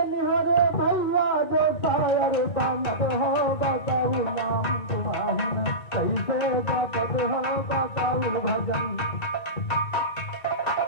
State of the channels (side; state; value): right; late; 2.2 ms